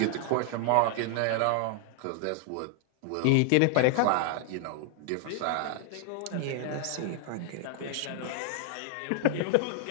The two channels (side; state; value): both; different; correlation 0.00